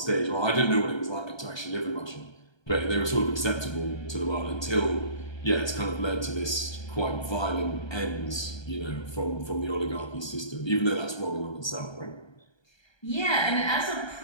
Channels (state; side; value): late; right; 1.3 ms